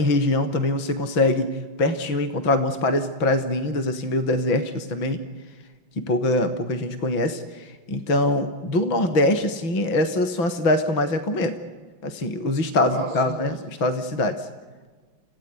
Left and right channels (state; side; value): late; right; 6.0 ms